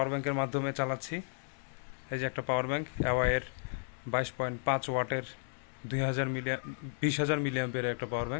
ব্যাংকের মাধ্যমে চালাচ্ছি। এই যে একটা পাওয়ার ব্যাংক, অ্যাওয়াইয়ের 22.5 ওয়াটের 20,000 মিলিঅ্যাম্পিয়ারের একটা পাওয়ার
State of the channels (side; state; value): right; silent; digital silence